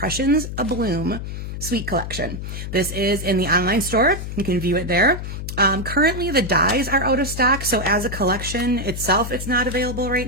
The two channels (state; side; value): noise; left; hum, 7 dB below the sound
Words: A Bloom Suite Collection. This is in the online store. You can view it there. Currently, the dies are out of stock, so as a collection itself, it's not available right